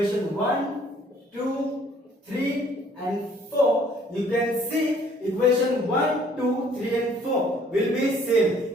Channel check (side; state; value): both; normal; correlation 0.59